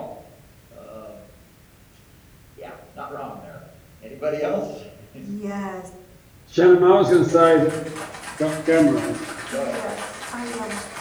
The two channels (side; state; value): both; identical; correlation 1.00